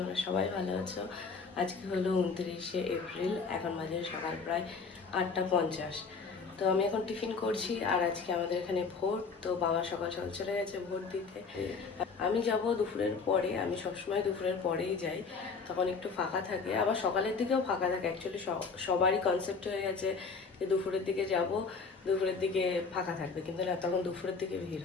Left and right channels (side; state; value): right; quieter; 4.9 dB